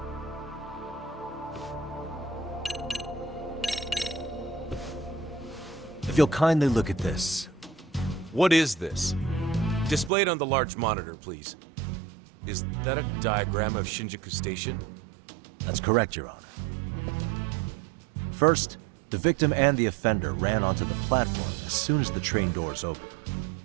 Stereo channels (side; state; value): left; drops out; at 10.1 s